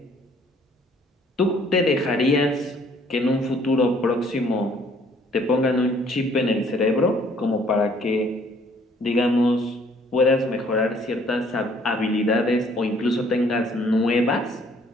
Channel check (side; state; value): both; normal; correlation 0.61